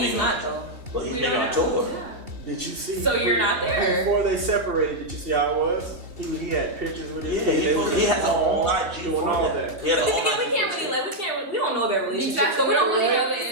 he's not though. But he's We maybe don't on know. tour. Yeah. Did you see? So you're not there. Before they separated, did you see how it was? He had pictures with his Yeah, kid. They was he has a whole all IG doing for all that. that. He has a But then whole again, we IG can't for really we don't know their relationship, Exactly. so we don't We don't really know the say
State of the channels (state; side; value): late; left; 2.6 ms